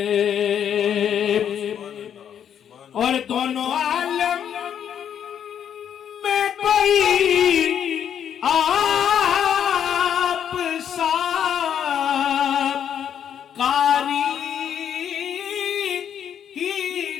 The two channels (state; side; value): quieter; right; 9.0 dB